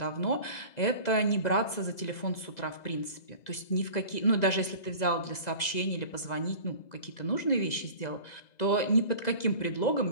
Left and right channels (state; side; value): late; right; 2.0 ms